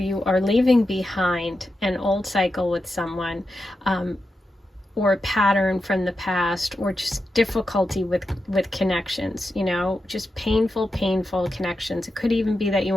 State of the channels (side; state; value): both; normal; correlation 0.89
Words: are leaving behind an old cycle with someone, or a pattern from the past, or just difficulty with connections, you know, just painful connections. It could even be that you